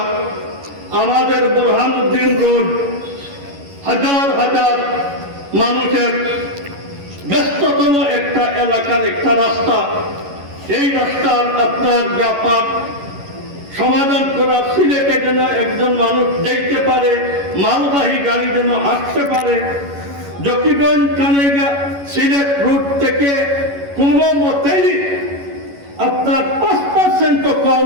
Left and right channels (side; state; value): left; late; 11 ms